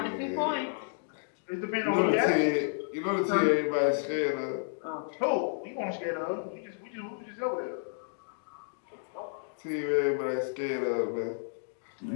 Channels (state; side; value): silent; right; digital silence